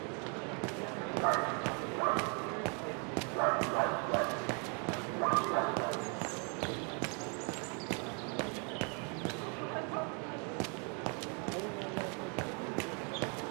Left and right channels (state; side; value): quieter; left; 37.2 dB